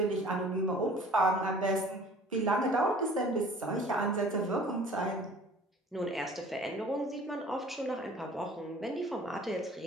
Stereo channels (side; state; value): both; normal; correlation 0.49